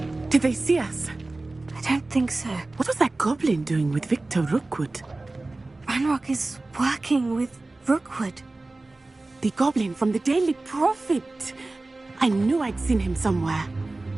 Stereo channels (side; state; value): left; quieter; 3.1 dB